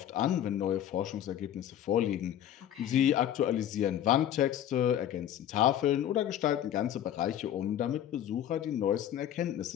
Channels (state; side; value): quieter; right; 10.9 dB